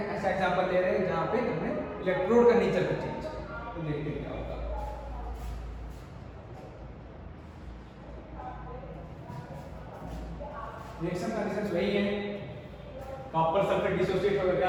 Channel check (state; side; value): identical; both; correlation 1.00